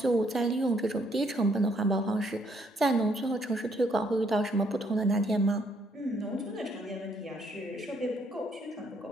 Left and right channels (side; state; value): both; normal; correlation 0.70